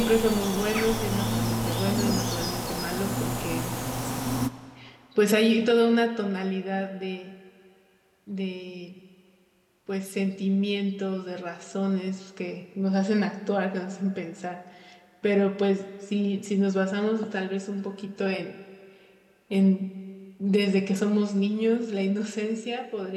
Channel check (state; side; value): identical; both; correlation 1.00